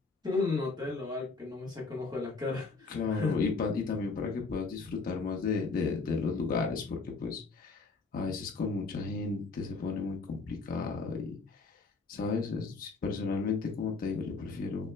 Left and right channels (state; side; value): quieter; right; 4.1 dB